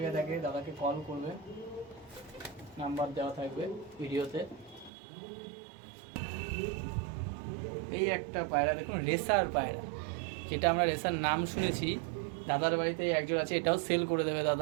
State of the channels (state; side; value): drops out; left; at 4.9 s